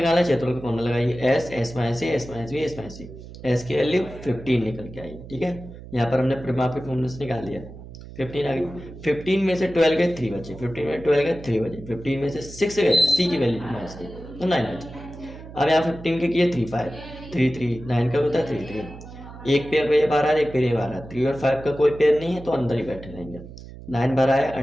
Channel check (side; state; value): right; noise; hum, 15 dB below the sound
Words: है, क्षेत्रफल का फॉर्मूला लगाइए S minus A, S minus B, S minus C. S की वैल्यू 15 निकल के आई। ठीक है, यहाँ पर हमने परिमाप के फॉर्मूले से निकाल लिया 15 आ गई। 15 में से 12 गए 3 बचे, 15 में 12 गए 3 बचे, 15 में से 6 गए, सी की वैल्यू माइनस की तो 9 बचे। अब यहाँ 15 के किए 3 5 3 3 9 का होता है 3 3। एक पेयर पे ये बार आ रहा है, एक पेयर ये बार आ रहा है। 3 और 5 का कोई पेयर नहीं है तो अंदर ही बैठे रहेंगे। 9 बार आया